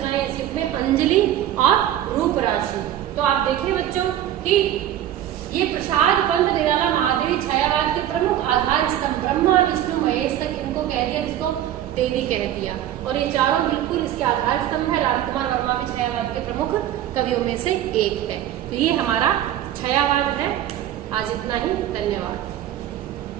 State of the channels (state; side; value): quieter; left; 11.9 dB